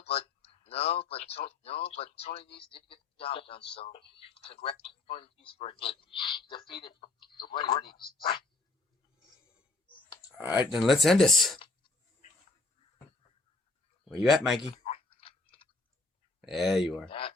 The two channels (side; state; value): right; quieter; 3.4 dB